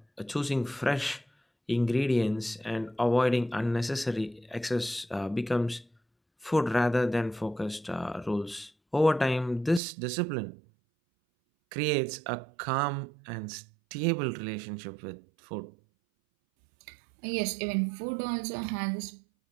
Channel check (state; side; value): drops out; left; at 9.8 s